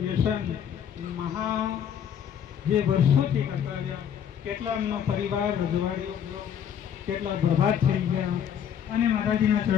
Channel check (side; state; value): right; quieter; 8.7 dB